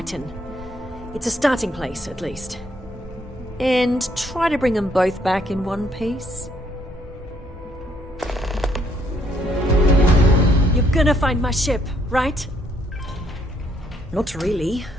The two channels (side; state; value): both; normal; correlation 0.69